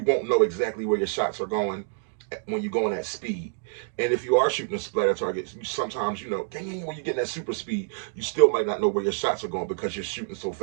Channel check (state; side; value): silent; left; digital silence